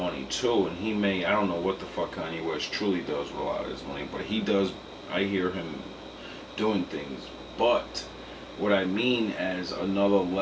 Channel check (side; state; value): both; identical; correlation 1.00